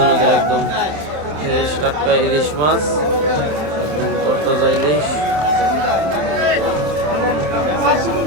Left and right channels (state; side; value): late; left; 27 ms